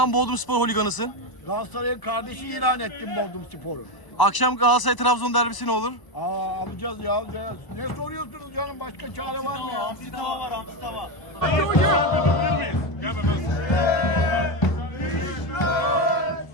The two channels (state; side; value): late; right; 1.0 ms